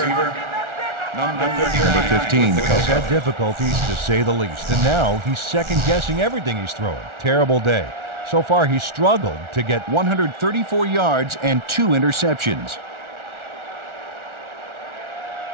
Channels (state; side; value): late; left; 1.4 ms